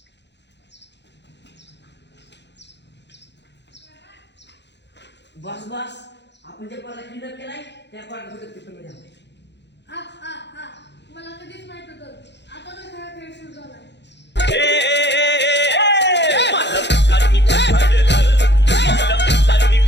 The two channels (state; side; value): late; right; 0.51 ms